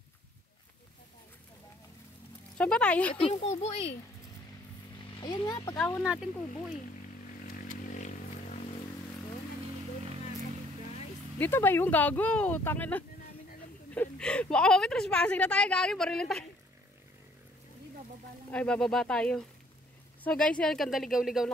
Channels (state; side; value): normal; both; correlation 0.62